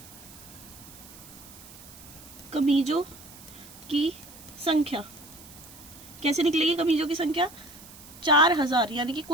कमीजों की संख्या। कैसे निकलेगी कमीजों की संख्या? 4000 यानी कि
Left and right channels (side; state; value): right; noise; hiss, 19 dB below the sound